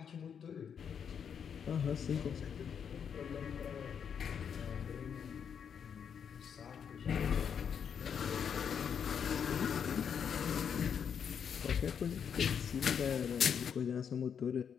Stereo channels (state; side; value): quieter; right; 7.5 dB